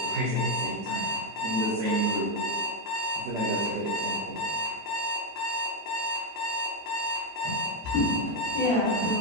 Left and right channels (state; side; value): normal; both; correlation 0.02